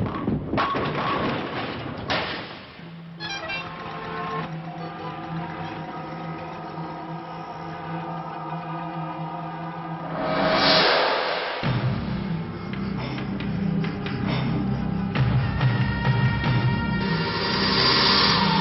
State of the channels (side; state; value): both; identical; correlation 1.00